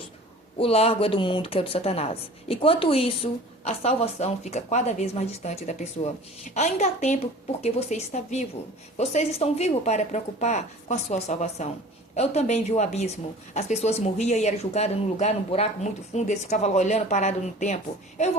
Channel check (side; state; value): both; normal; correlation 0.43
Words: O largo é do mundo, que é o de Satanás. Enquanto isso, a salvação fica cada vez mais distante da pessoa. Ainda há tempo porque você está vivo. Vocês estão vivos para preocupar com a sua salvação. Eu também vi o abismo. As pessoas morriam e eram julgadas num lugar, num buraco muito fundo. Eles ficavam lá olhando, parados no tempo. Eu